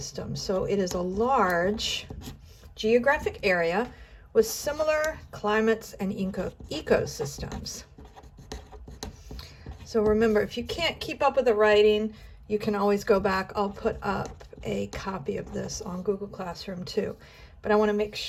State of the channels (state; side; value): identical; both; correlation 1.00